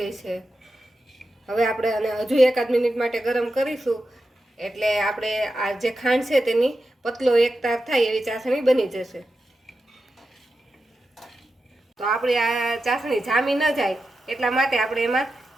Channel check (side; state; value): both; normal; correlation 0.90